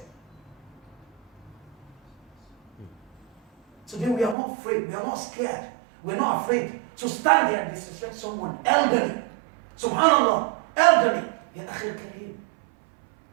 Today we are not afraid, we are not scared, we're not afraid to stand there and disrespect someone elderly. Subhanallah, elderly. Ya akhil kareem.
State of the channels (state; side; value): drops out; left; at 4.4 s